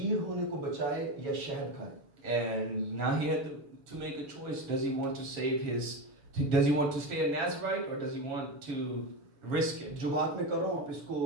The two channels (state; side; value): late; left; 7.3 ms